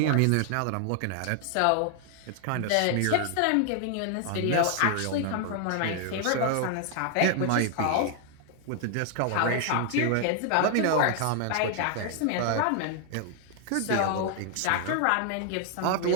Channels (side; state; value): both; different; correlation 0.00